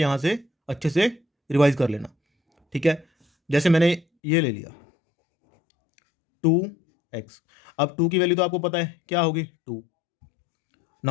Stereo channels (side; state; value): right; drops out; at 4.0 s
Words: से अच्छे से रिवाइज कर लेना, ठीक है। जैसे मैंने ये ले लिया 2x। अब 2 की वैल्यू तो आपको पता है क्या होगी, 2।